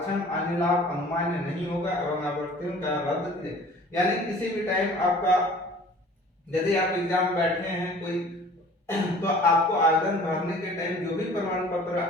अन्य लाभ अनुमान्य नहीं होगा एवं अभ्यर्थियों का रद्द किया। यानी किसी भी टाइम आपका, यदि आप एग्जाम बैठे हैं कोई, तो आपको आवेदन भरने के टाइम जो भी प्रमाण पत्र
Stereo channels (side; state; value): both; normal; correlation 0.48